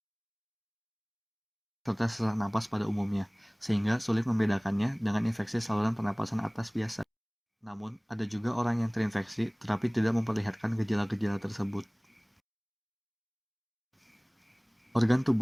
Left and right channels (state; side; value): identical; both; correlation 1.00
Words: serta sesak napas pada umumnya, sehingga sulit membedakannya dengan infeksi saluran pernapasan atas biasa. Namun, ada juga orang yang terinfeksi tetapi tidak memperlihatkan gejala-gejala tersebut. Organ